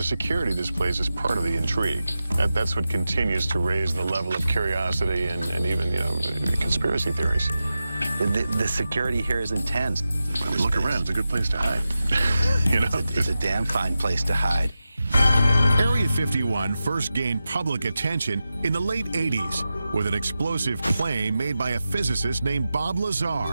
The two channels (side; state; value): both; inverted; correlation -0.93